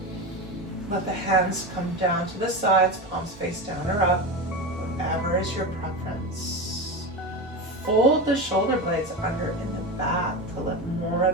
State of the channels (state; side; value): normal; both; correlation 0.20